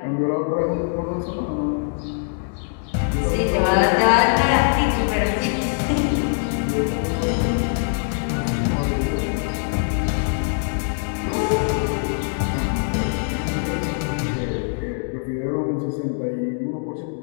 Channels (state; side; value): silent; right; digital silence